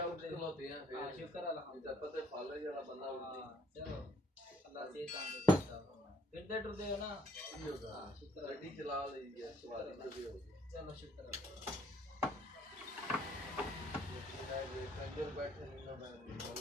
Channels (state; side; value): normal; both; correlation 0.64